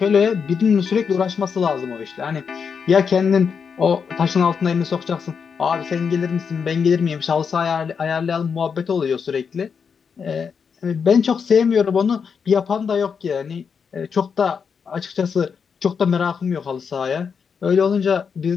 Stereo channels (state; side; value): quieter; right; 6.3 dB